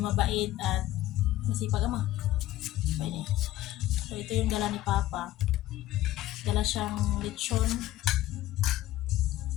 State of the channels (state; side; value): quieter; right; 15.0 dB